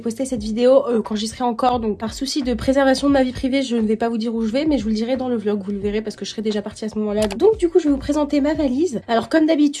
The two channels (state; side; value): identical; both; correlation 1.00